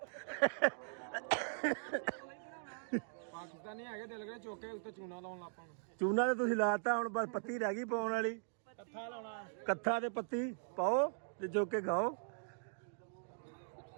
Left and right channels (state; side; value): silent; left; digital silence